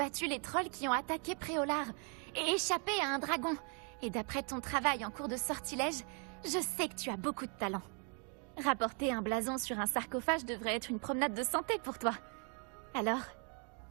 les trolls qui ont attaqué Préolard et échappé à un dragon. Et d'après ton travail en cours de sortilège, je sais que tu as beaucoup de talent. Rapporter un blason sur un sarcophage devrait être une promenade de santé pour toi. Alors,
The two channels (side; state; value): left; quieter; 38.5 dB